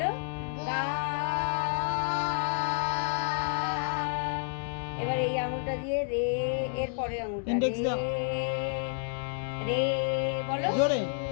গা এবার এই আঙুলটা দিয়ে রে এর পরের আঙুলটা Index রে দাও। রে বলো জোরে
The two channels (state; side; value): silent; right; digital silence